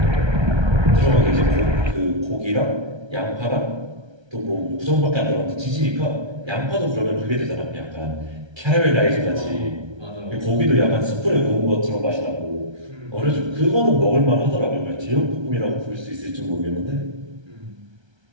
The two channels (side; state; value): left; late; 1.3 ms